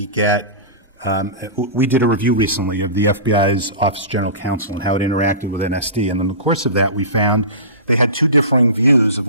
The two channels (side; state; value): both; inverted; correlation -0.30